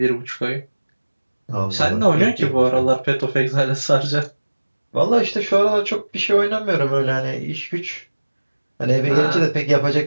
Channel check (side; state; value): both; inverted; correlation -1.00